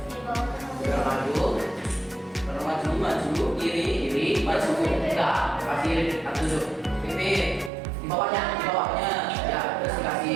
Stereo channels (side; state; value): left; drops out; at 7.7 s